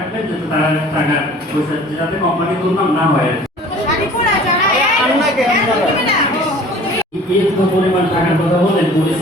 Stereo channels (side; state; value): both; normal; correlation 0.47